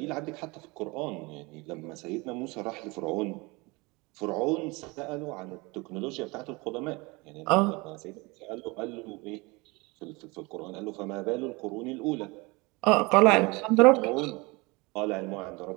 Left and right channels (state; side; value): quieter; left; 25.5 dB